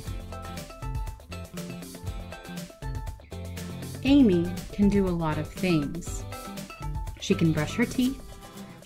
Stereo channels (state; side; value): identical; both; correlation 1.00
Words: Amy can do a lot of things. She can brush her teeth,